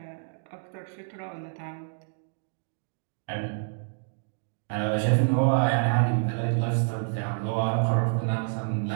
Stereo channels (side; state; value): left; silent; digital silence